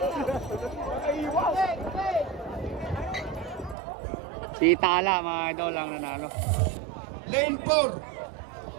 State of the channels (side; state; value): left; drops out; at 3.8 s